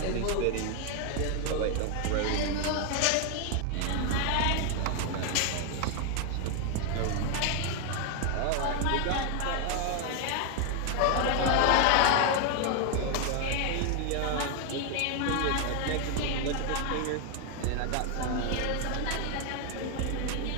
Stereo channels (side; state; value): both; different; correlation 0.00